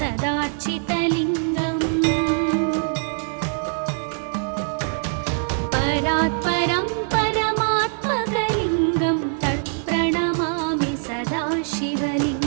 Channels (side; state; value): left; silent; digital silence